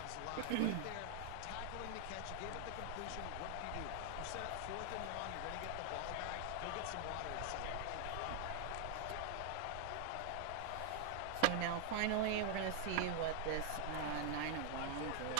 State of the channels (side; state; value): both; different; correlation 0.00